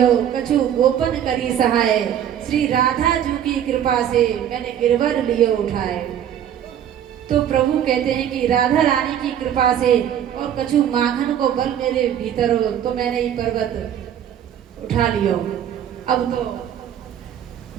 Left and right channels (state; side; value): quieter; left; 9.9 dB